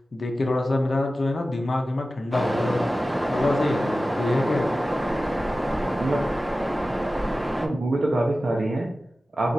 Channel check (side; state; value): both; normal; correlation 0.95